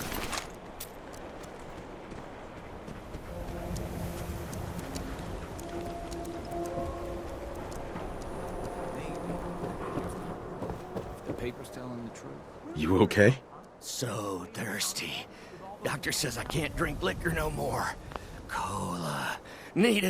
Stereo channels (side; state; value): both; identical; correlation 1.00